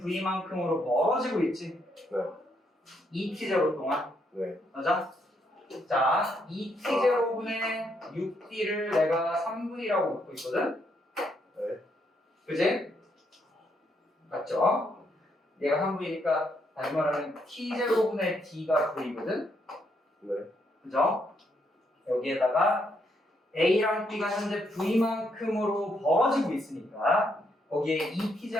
멀어지고 있지. 네. 2T0 동안. 네. 맞아? 자, 2T0분의 6D를 내가 3V라고 놓고 있거든? 네. 그지? 맞죠? 얘가 3V니까 다시 말하면 T0분의 D가 V거든? 네. 그죠? 여기에다가 A랑 B가 현재 V만큼으로 벌어지고 있으니까 거기에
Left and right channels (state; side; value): normal; both; correlation 0.75